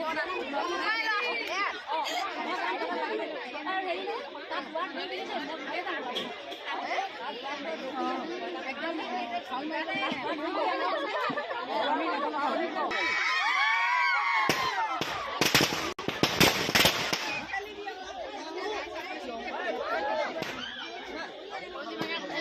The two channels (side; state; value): both; identical; correlation 1.00